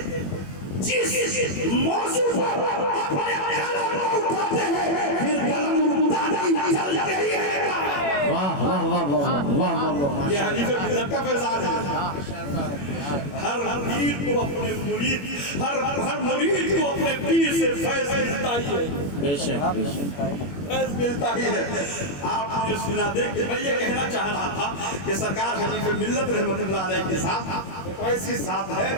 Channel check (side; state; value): right; late; 21 ms